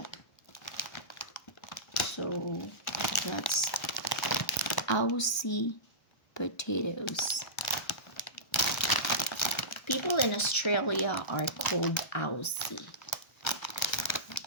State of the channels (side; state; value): right; late; 1.3 ms